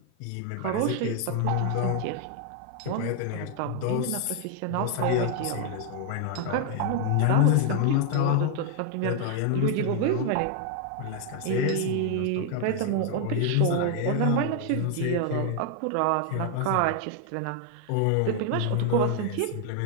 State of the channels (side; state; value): both; different; correlation 0.00